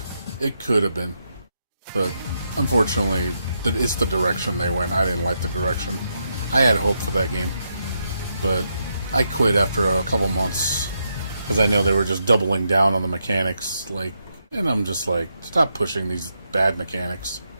It could have been, but unfortunately, it's the direction they went. I didn't like the direction. I had hope for that game, but I quit after a couple months because I know they were just doubling down on the mechanics. Like, and I'm just like, stop pushing these bad mechanics.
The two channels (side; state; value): both; inverted; correlation -0.81